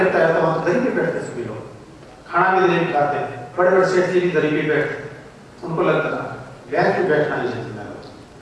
है, तो वहां दरी पे बैठते सभी लोग, खाना भी दरी पे खाते हैं, बड़े बड़े सेठ जी भी दरी पे बैठते, उनको लगता है बेंच पे बैठना ही जेंटलमैन।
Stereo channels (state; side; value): identical; both; correlation 1.00